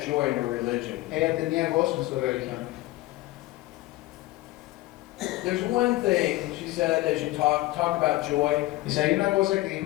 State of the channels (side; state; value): right; quieter; 18.2 dB